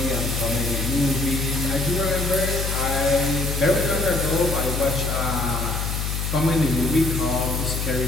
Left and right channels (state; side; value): noise; left; hum, 2 dB below the sound